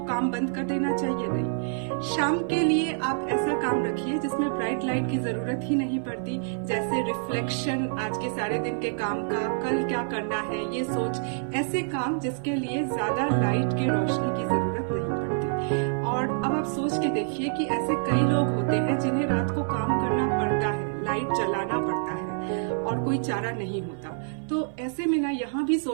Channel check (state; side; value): silent; left; 56 dB below the other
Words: काम बंद कर देना चाहिए? नहीं, शाम के लिए आप ऐसा काम रखिए जिसमें ब्राइट लाइट की जरूरत ही नहीं पड़ती। जैसे रिफ्लेक्शन आज के सारे दिन के काम का, कल क्या करना है ये सोच, ऐसे काम जिसके लिए ज्यादा लाइट की रोशनी की जरूरत नहीं पड़ती। और अब आप सोच के देखिए कि ऐसे कई लोग होते हैं जिन्हें रात को काम करना पड़ता है, लाइट जलाना पड़ता है, और कोई चारा नहीं होता। तो ऐसे में ना, यहाँ भी